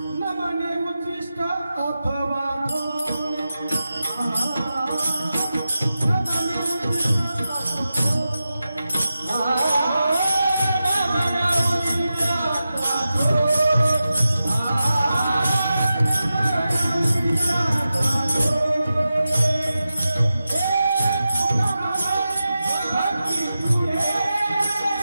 नमने उच्चिष्ट अथवा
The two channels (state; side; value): inverted; both; correlation -0.92